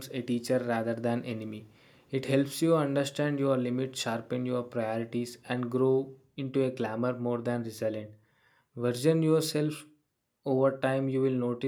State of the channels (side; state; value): both; identical; correlation 1.00